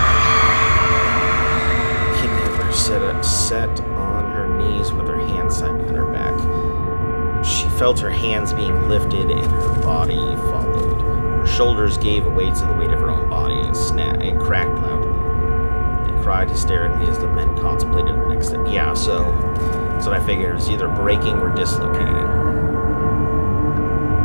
He never sat on her knees with her hands tied behind her back. She felt her hands being lifted and her body followed. Her shoulders gave way to the weight of her own body and cracked loudly. They cried hysterically as the men contemplated the next step. Yeah, so that's what I figured. It was either breaking or dislocating.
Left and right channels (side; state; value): both; inverted; correlation -1.00